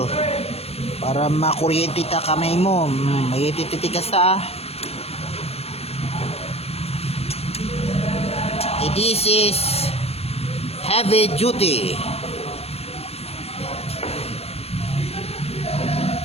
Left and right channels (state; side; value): late; right; 0.29 ms